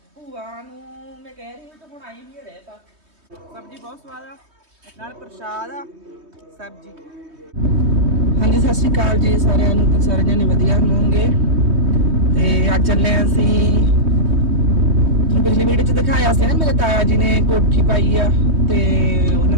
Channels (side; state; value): left; late; 3.2 ms